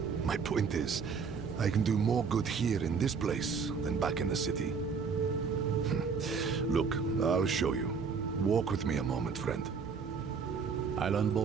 My point is, I can do more good here in this place than back in the city. Look, I'll show you. Walk with me a moment, friend. I'll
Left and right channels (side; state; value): left; quieter; 5.6 dB